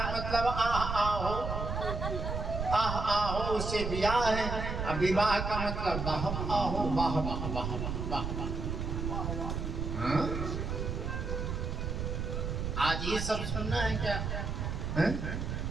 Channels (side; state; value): right; noise; rumble, 3 dB below the sound